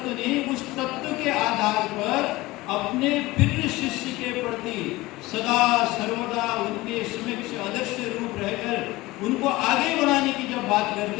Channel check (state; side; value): quieter; right; 19.7 dB